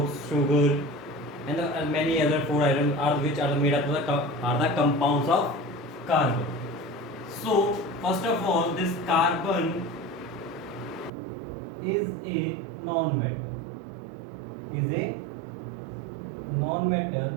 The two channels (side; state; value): left; drops out; at 11.1 s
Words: sugar, and many other food items are which are made up of the compounds of carbon. So first of all, this carbon is a non-metal. Is a non-metal